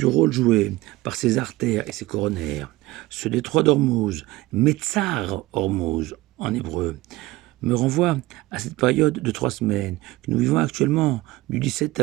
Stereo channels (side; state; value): left; quieter; 19.1 dB